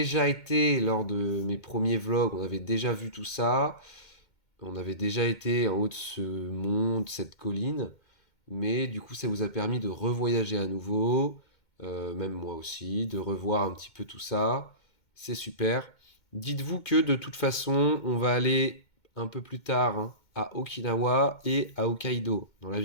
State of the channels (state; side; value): late; right; 2.2 ms